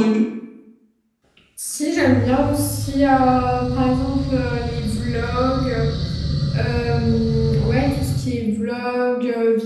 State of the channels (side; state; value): both; identical; correlation 1.00